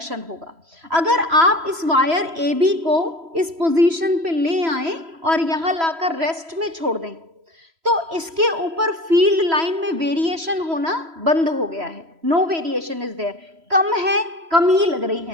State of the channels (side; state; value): left; late; 3.0 ms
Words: होगा। अगर आप इस वायर AB को इस पोजीशन पे ले आए और यहाँ लाकर रेस्ट में छोड़ दें, तो इसके ऊपर फील्ड लाइन में वेरिएशन होना बंद हो गया है। No variation is there. कम है, कम ही लग रही